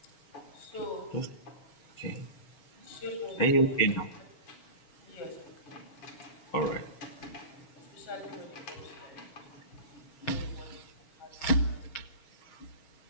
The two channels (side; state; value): right; late; 6.4 ms